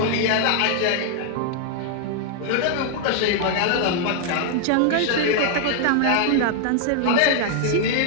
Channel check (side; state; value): both; different; correlation 0.00